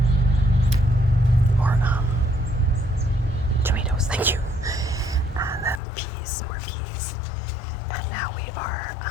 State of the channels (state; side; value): drops out; right; at 5.8 s